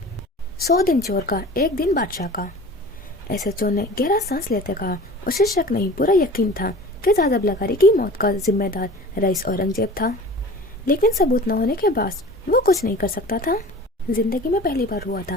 100 दिन चोर का, एक दिन बादशाह का। एसएचओ ने गहरा सांस लेते कहा। उसे शक नहीं, पूरा यकीन था कि जाजिब लगारी की मौत का जिम्मेदार रईस औरंगजेब था, लेकिन सबूत न होने के बाद वो कुछ नहीं कर सकता था। जिंदगी में पहली बार हुआ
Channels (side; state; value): both; normal; correlation 0.40